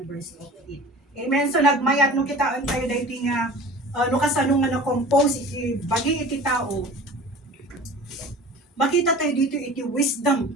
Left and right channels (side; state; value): both; normal; correlation 0.40